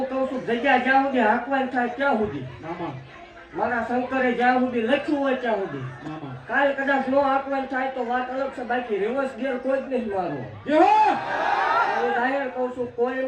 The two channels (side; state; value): both; identical; correlation 1.00